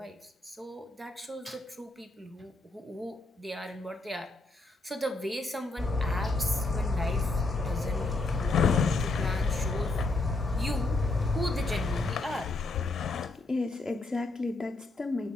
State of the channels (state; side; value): quieter; right; 3.1 dB